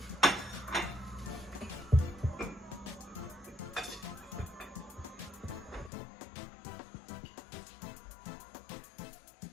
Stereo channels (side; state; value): right; drops out; at 5.9 s